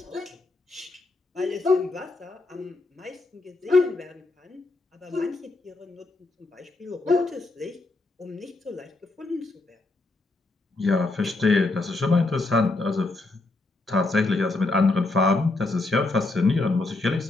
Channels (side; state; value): right; quieter; 3.2 dB